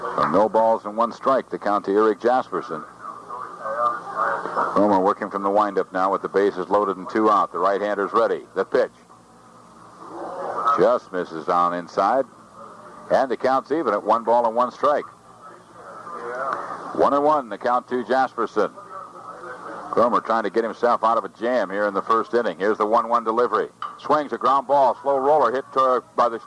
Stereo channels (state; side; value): identical; both; correlation 1.00